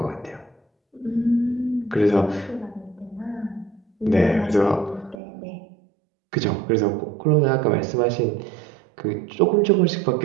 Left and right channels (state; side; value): drops out; left; at 5.2 s